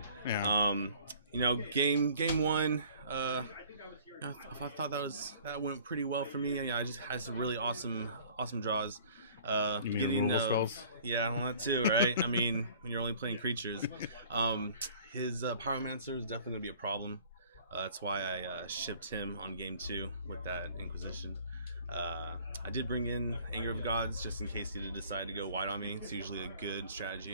Yeah. You know, game one. I thought that went pretty well for me. I just had some really awesome awesome draws. You mean Getting removal spells? yeah, well, that too, right? I mean, when you're only playing creatures, his Pyromancer is definitely gonna be a problem. That's why I shipped him on game 2 with that Inquisition. I did bring in Anger of Gods just in case he did decide to go wide on me. It's usually a good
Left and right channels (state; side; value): inverted; both; correlation -0.52